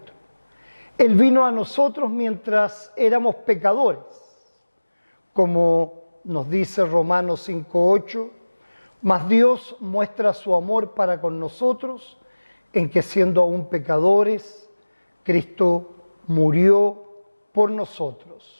Él vino a nosotros mientras éramos pecadores, como nos dice Romanos 5:8, mas Dios muestra su amor para con nosotros en que siendo aún pecadores, Cristo murió por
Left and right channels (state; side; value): inverted; both; correlation -1.00